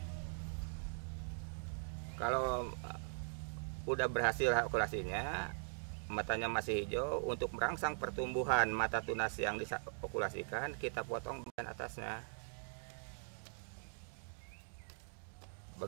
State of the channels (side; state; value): left; silent; digital silence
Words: Kalau udah berhasil okulasinya, matanya masih hijau, untuk merangsang pertumbuhan mata tunas yang diokulasikan, kita potong bagian atasnya.